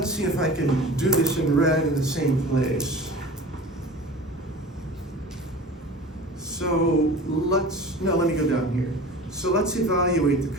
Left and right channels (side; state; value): both; normal; correlation 0.38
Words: see if I can do this in red in the same place. So let me go down here. So let's evaluate